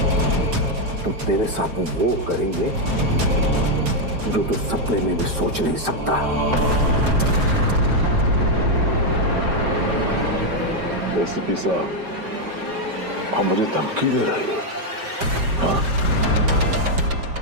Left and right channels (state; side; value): late; left; 5.2 ms